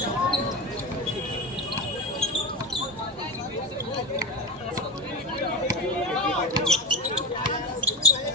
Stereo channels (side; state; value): both; normal; correlation 0.21